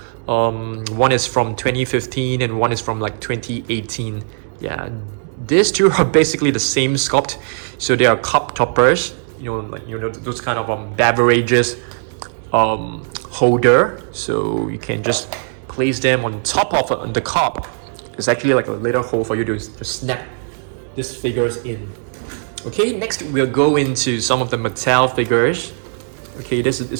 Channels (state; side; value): silent; left; 65 dB below the other